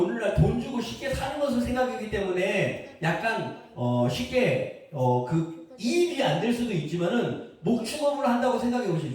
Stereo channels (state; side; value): identical; both; correlation 1.00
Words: 돈 주고 쉽게 사는 것을 생각하기 때문에 약간 쉽게 그 이입이 안 될 수도 있지만은 목축업을 한다고 생각해